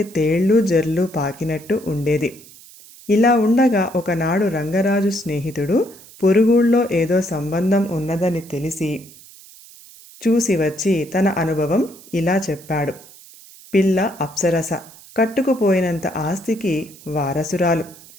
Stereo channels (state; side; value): noise; right; hiss, 21 dB below the sound